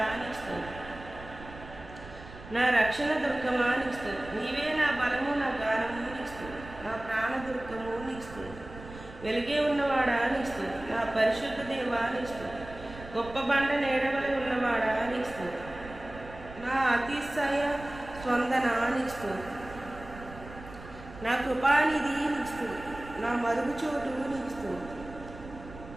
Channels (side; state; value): right; noise; rumble, 15 dB below the sound